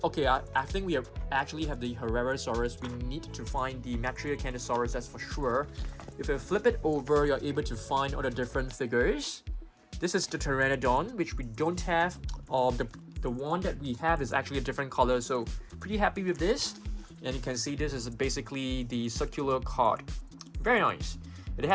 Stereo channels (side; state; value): both; identical; correlation 1.00